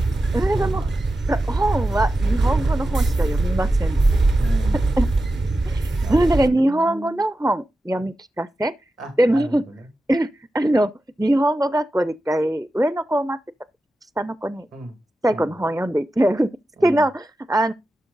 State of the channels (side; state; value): both; normal; correlation 0.92